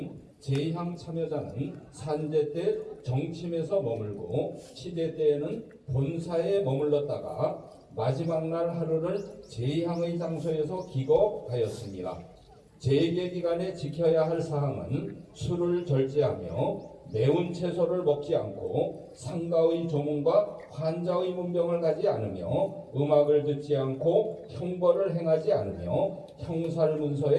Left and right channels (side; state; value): both; identical; correlation 1.00